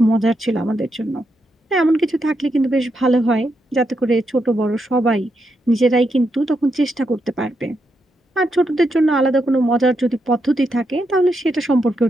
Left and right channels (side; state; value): both; normal; correlation 0.83